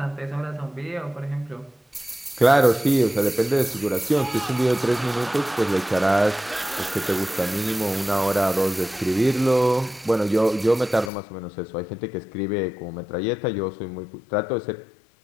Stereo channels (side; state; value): right; drops out; at 11.1 s